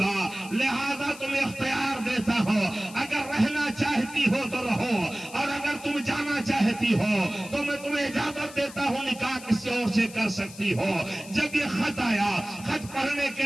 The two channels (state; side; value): noise; left; hiss, 16 dB below the sound